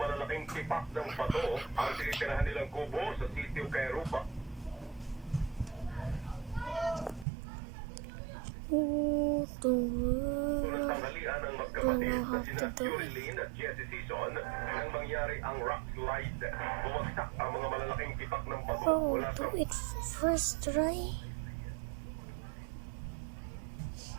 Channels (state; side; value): drops out; left; at 7.2 s